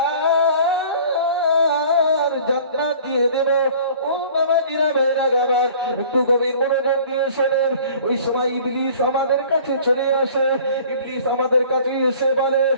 জান্নাত দিয়ে দেব। ও বাবা জিরা ভাইরা গাবার, একটু গভীর মনোযোগ দিয়ে শোনেন। ওই সময় ইবলিস আমাদের কাছে চলে আসে। ইবলিস আমাদের কাছে এসে বলে,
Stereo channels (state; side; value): inverted; both; correlation -0.48